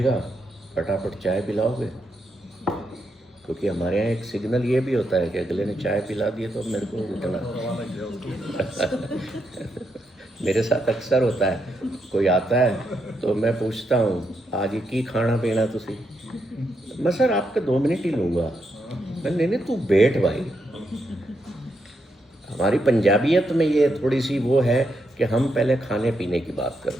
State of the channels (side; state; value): both; normal; correlation 0.81